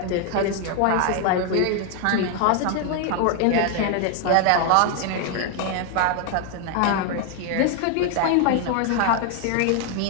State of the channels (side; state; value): both; different; correlation 0.01